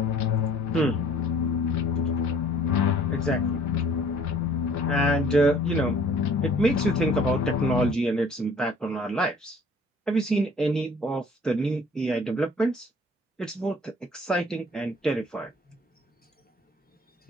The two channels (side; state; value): both; normal; correlation 0.54